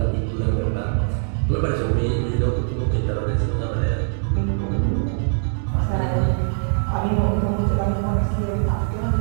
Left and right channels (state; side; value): silent; left; digital silence